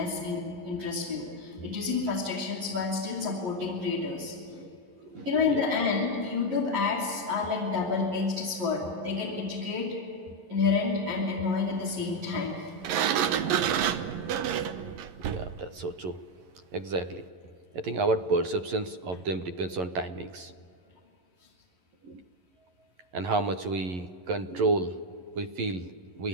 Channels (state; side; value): late; left; 11 ms